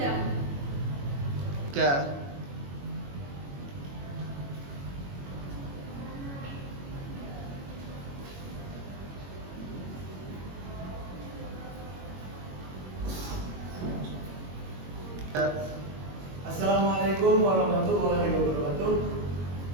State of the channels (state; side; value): late; left; 21 ms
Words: Assalamualaikum warahmatullahi wabarakatuh.